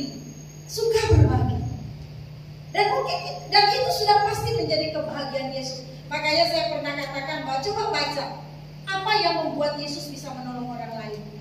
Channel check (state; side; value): identical; both; correlation 1.00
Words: suka berbagi. Dan itu sudah pasti menjadi kebahagiaan Yesus. Makanya saya pernah katakan bahwa coba baca apa yang membuat Yesus bisa menolong orang lain.